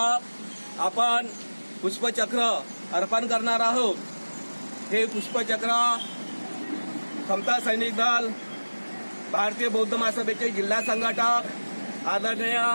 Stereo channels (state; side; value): inverted; both; correlation -1.00